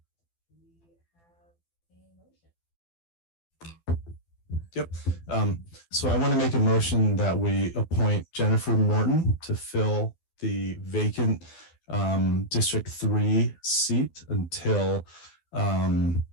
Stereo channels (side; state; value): right; late; 12 ms